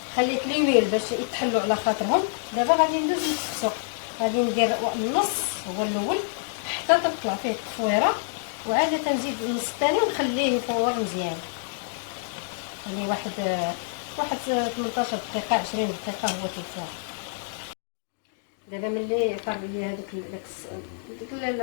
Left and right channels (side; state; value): right; silent; digital silence